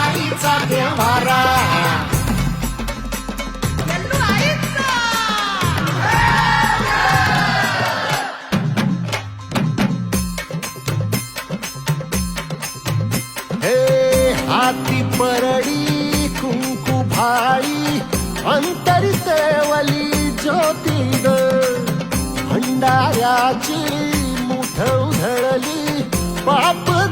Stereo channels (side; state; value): both; identical; correlation 1.00